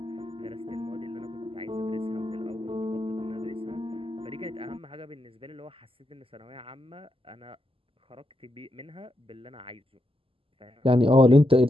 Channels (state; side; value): late; left; 0.26 ms